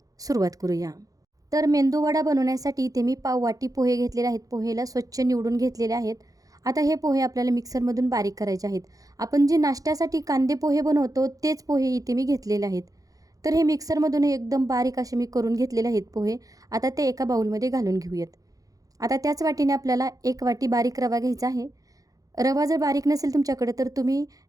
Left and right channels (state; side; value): late; left; 0.17 ms